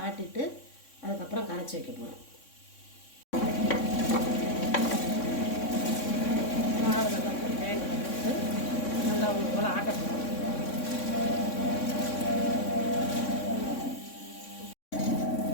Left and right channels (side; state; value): right; late; 3.6 ms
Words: ஆட்டிட்டு அதுக்கப்புறம் கரைச்சி வைக்க போகிறோம். மாவு நல்லா கிரைண்டரில் போட்டு நல்லா ஒன்று போல் ஆட்ட போகிறோம்.